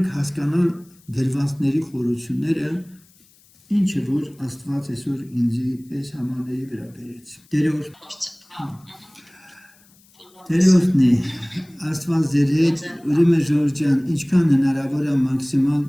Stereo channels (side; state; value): left; noise; hiss, 30 dB below the sound